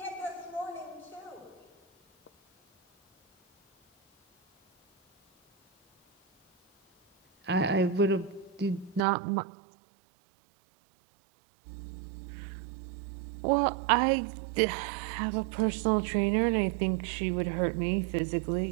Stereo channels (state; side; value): drops out; left; at 9.0 s